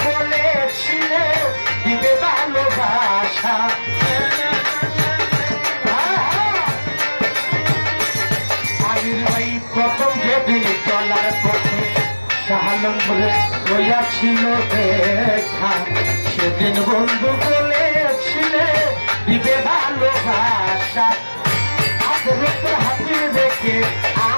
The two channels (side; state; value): both; inverted; correlation -1.00